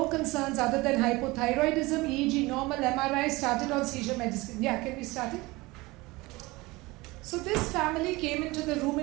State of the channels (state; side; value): quieter; left; 22.0 dB